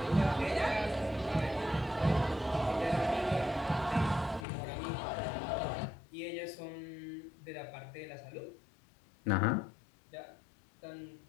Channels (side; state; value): right; drops out; at 4.5 s